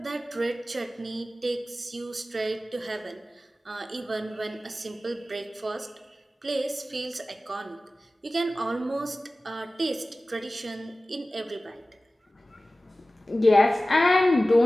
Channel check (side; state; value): both; normal; correlation 0.96